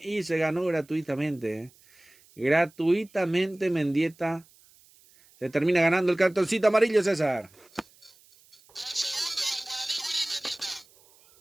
se ganó gratuitamente. Gratuitamente Mendieta. Se termina ganando el cartoncito amarillo, César.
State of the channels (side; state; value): right; noise; hiss, 29 dB below the sound